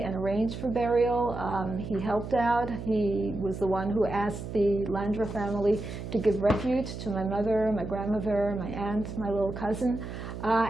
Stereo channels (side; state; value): right; noise; hum, 8 dB below the sound